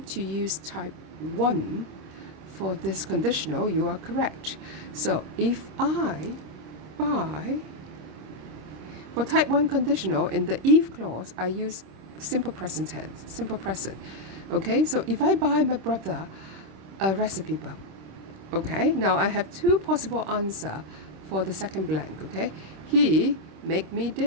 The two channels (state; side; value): late; left; 26 ms